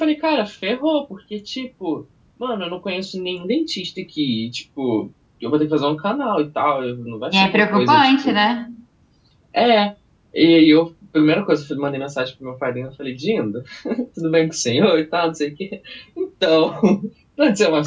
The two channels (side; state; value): both; identical; correlation 1.00